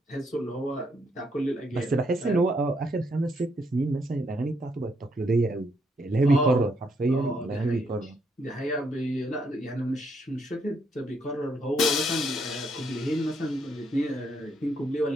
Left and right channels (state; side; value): normal; both; correlation 0.74